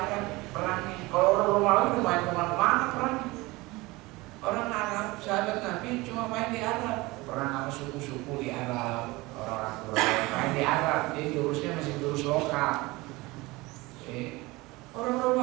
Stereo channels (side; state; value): left; quieter; 22.0 dB